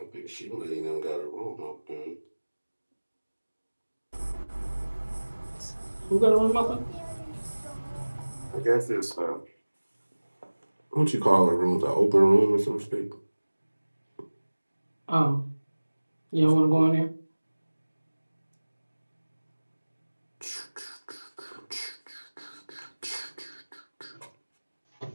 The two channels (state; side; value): inverted; both; correlation -1.00